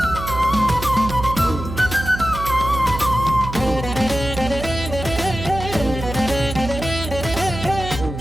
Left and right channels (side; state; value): right; noise; hum, 8 dB below the sound